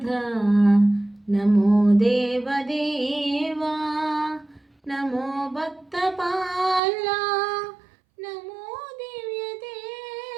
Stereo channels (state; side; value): drops out; left; at 6.8 s